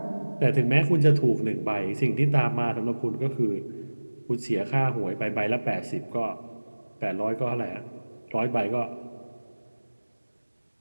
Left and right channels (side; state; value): both; inverted; correlation -1.00